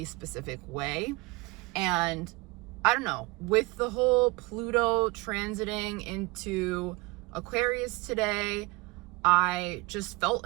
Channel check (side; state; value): left; quieter; 24.4 dB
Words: specific way. And I don't know, with the whole Pluto transiting into Aquarius today, I just